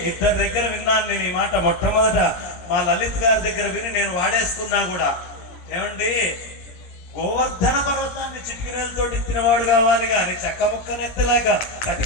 ఇద్దరి దగ్గర విన్నాను నేను ఈ మాట. మొట్టమొదట మా లలిత్ గారి దగ్గర విని నేను వాడేసుకున్నా కూడా. ఏమండి, గోవర్ధన పర్వతాన్ని చిటికినేలతో ఎత్తినవాడు కావాలి కానీ చక్క ముక్కనెత్తలేక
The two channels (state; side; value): late; right; 17 ms